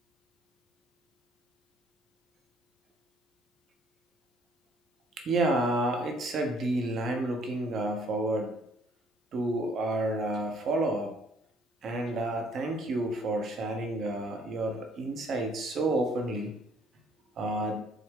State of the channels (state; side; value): normal; both; correlation 0.62